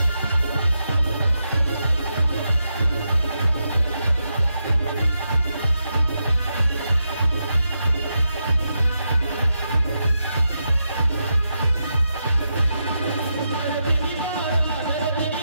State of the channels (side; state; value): both; inverted; correlation -0.85